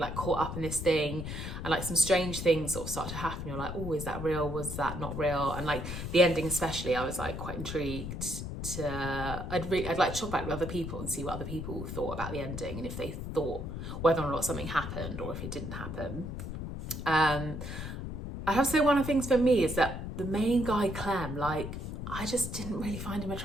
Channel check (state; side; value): noise; left; rumble, 6 dB below the sound